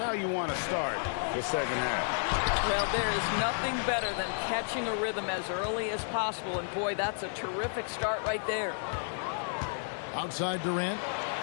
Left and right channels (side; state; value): right; silent; digital silence